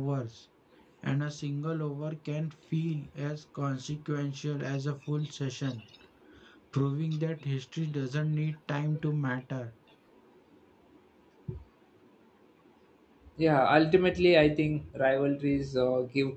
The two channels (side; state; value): both; identical; correlation 1.00